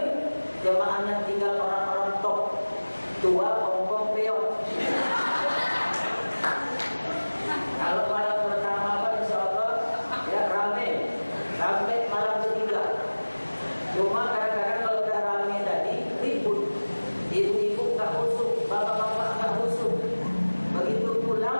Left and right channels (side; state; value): both; inverted; correlation -1.00